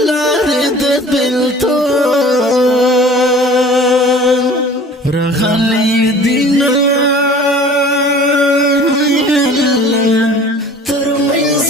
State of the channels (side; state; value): both; normal; correlation 0.46